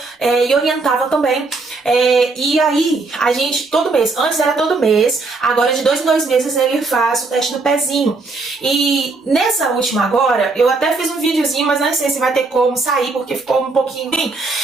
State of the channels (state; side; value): quieter; left; 3.8 dB